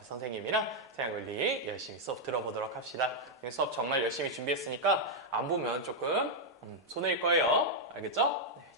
선생님이랑 생활관리 열심히 수업 들어보도록 합시다. 수업 정말 열심히 준비했으니까 안 보면 조금 손해일 거예요. 알겠죠? 네,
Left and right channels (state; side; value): normal; both; correlation -0.02